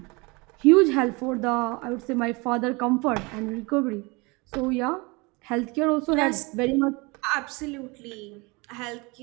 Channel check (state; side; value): quieter; left; 26.7 dB